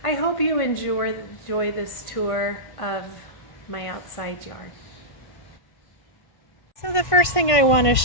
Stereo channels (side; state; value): right; late; 1.5 ms